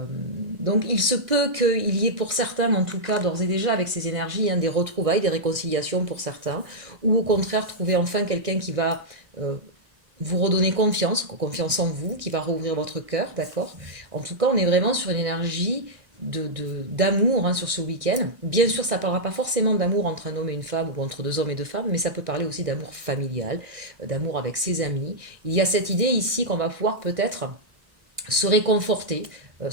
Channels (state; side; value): late; left; 1.6 ms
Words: Donc il se peut qu'il y ait pour certains, en tout cas d'ores et déjà avec ces énergies, des retrouvailles, des réconciliations pour certains, ou au contraire trouver enfin quelqu'un qui va vous redonner confiance en vous, qui va rouvrir votre cœur, d'accord. En tout cas, on est vraiment sur une énergie d'amour sur ce week-end. Bien sûr, ça ne parlera pas forcément d'amour entre un homme et une femme ou entre deux hommes et deux femmes, mais ça peut parler aussi d'amour familial, d'amour avec ses amis. Il y a cette idée ici qu'on va pouvoir peut-être se réconforter,